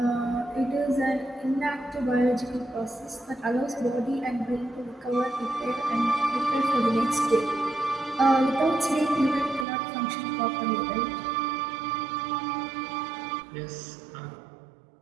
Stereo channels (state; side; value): drops out; left; at 9.7 s